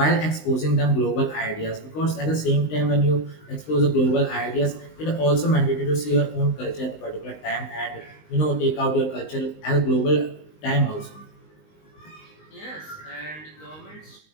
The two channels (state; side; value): late; right; 19 ms